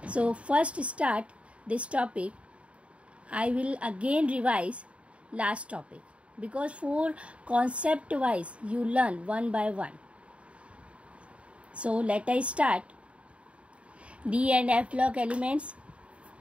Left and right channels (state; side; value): late; left; 0.062 ms